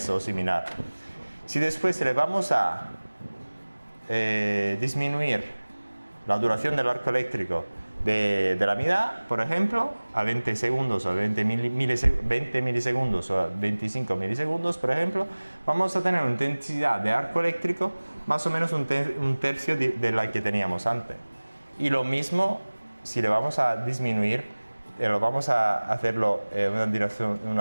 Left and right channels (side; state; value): both; inverted; correlation -1.00